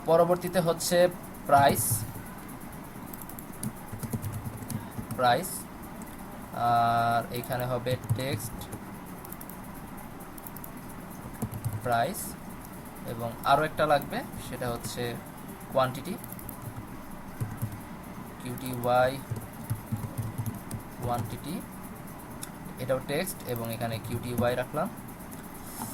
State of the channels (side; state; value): both; identical; correlation 1.00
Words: পরবর্তীতে হচ্ছে প্রাইস, প্রাইস, আর এখানে হবে টেক্সট প্রাইস, এবং আরও একটা লাগবে সেটা হচ্ছে কোয়ান্টিটি, কিউটিওয়াই কোয়ান্টিটি, এটাও টেক্সট, এবং এখানে কিউটিওয়াই রাখলাম।